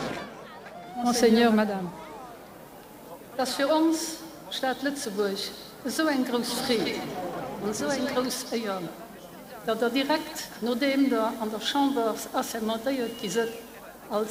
Monseigneur, Madame. Das für uns, Stadt Lützeburg, so ein großes Fried und so ein großes Ehren, dass direkt, nachdem da an der Chambre assermentiert ist,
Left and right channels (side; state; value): both; identical; correlation 1.00